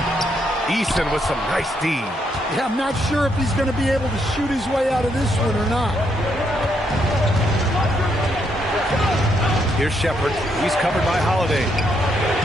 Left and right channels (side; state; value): both; normal; correlation 0.76